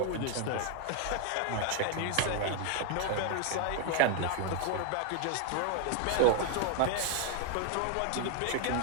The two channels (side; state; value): both; different; correlation 0.01